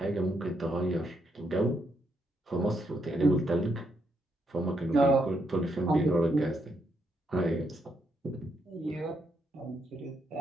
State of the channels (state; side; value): normal; both; correlation 0.78